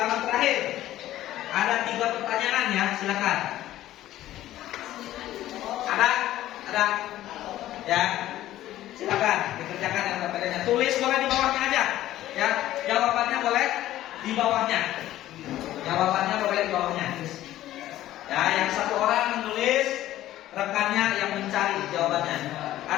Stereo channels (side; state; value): right; quieter; 14.1 dB